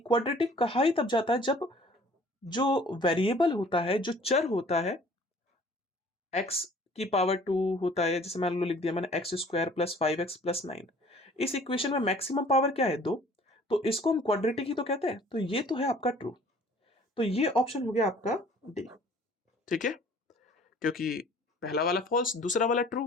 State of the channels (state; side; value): normal; both; correlation 0.53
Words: कहा ही तब जाता है जब जो वेरिएबल होता है, जो चर होता है, एक्स की पावर 2 होता है, जैसे मान लो लिख दिया मैंने एक्स स्क्वायर प्लस 5x+9। इस इक्वेशन में मैक्सिमम पावर क्या है? 2। तो इसको हम क्वाड्रेटिक ही तो कहते हैं, तो ये तो है आपका ट्रू। तो ये ऑप्शन हो गया आपका डी। ठीक है, क्योंकि पहला वाला फॉल्स, दूसरा वाला